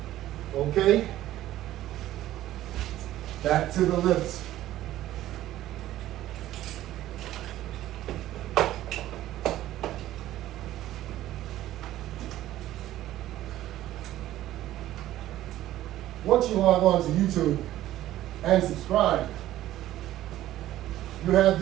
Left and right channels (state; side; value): quieter; left; 14.1 dB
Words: Okay, back to the lifts. Once you log on to YouTube and subscribe, you have